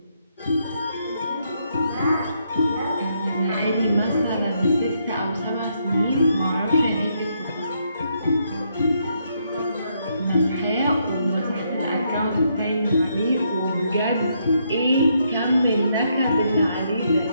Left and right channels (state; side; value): inverted; both; correlation -0.76